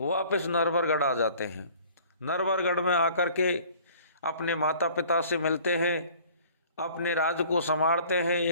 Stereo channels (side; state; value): both; inverted; correlation -0.51